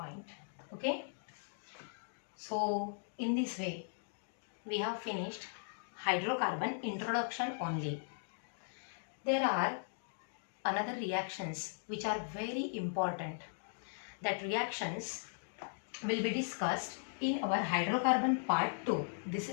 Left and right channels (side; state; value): right; silent; digital silence